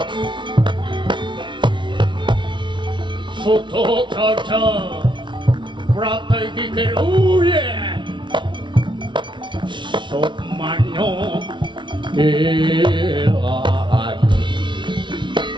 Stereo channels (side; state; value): left; late; 0.24 ms